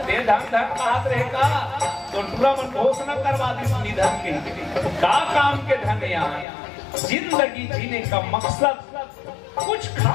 ते धन धन बात रहेगा तो पूरा मन घोषणा करवा दी निधन के का काम के धन। यहाँ जिंदगी जीने का मकसद कुछ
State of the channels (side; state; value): right; drops out; at 6.5 s